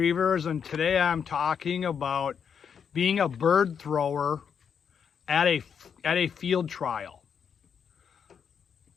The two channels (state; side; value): quieter; right; 7.2 dB